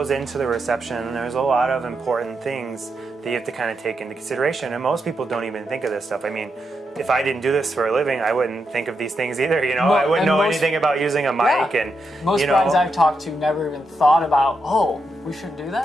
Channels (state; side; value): normal; both; correlation 0.84